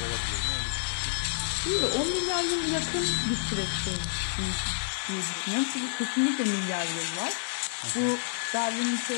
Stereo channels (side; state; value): right; silent; 59 dB below the other